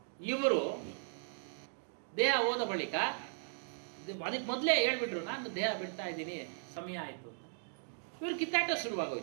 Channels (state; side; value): silent; left; digital silence